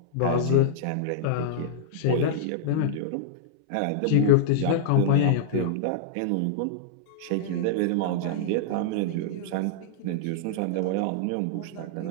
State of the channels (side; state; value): both; different; correlation -0.02